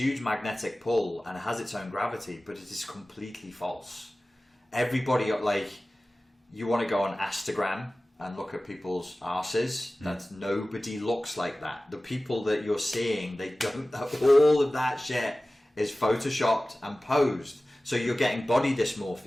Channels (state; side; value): normal; both; correlation 0.97